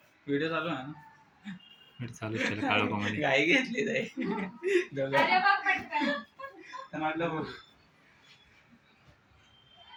व्हिडिओ चालू आहे ना. चालू केलं काळू कोमध्ये गाई घेतली जाई अरे बघ पटकन. म्हटलं बघ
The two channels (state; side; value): identical; both; correlation 1.00